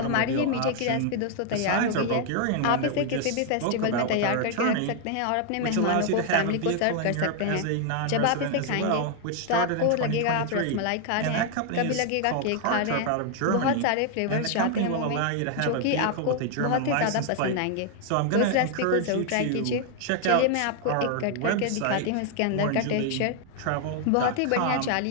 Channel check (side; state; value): both; different; correlation 0.00